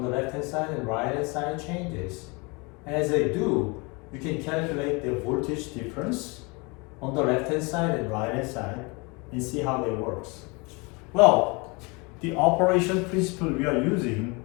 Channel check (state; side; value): quieter; right; 28.5 dB